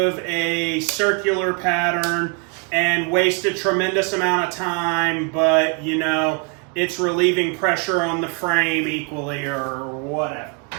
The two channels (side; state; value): left; quieter; 34.8 dB